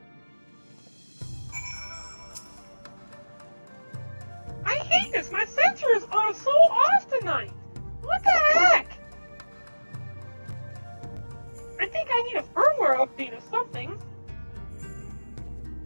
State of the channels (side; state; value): both; inverted; correlation -1.00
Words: I hate this. My sensors are so off tonight. What the heck? I think I need a firmware update or something.